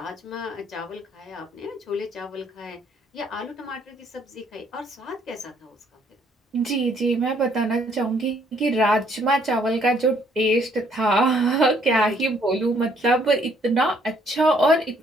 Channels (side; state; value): both; normal; correlation 0.65